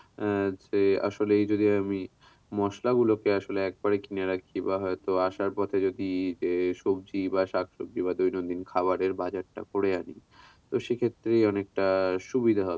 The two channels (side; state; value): both; identical; correlation 1.00